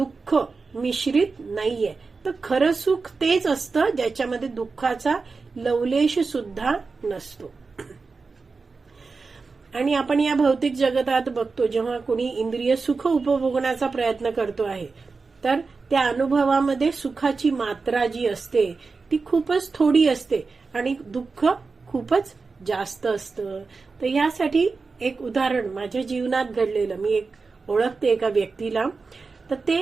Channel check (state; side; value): quieter; left; 4.3 dB